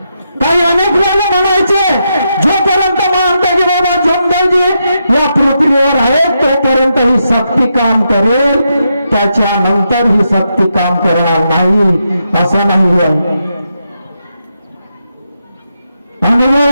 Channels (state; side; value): inverted; both; correlation -0.83